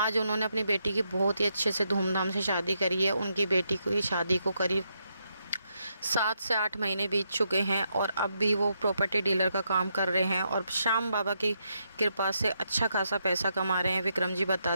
उन्होंने अपनी बेटी की बहुत ही अच्छे से धूमधाम से शादी करी है। उनकी बेटी की शादी को करीब 7 से 8 महीने बीत चुके हैं और अब भी वो प्रॉपर्टी डीलर का काम कर रहे हैं और श्याम बाबा की कृपा से अच्छा खासा पैसा कमा रहे हैं। विक्रम जी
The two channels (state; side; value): inverted; both; correlation -0.80